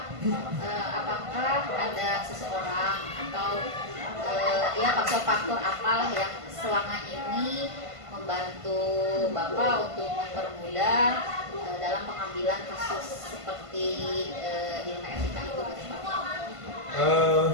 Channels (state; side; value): late; left; 1.5 ms